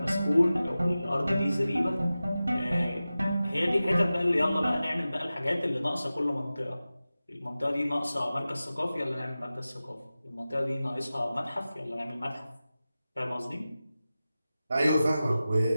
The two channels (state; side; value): inverted; both; correlation -0.95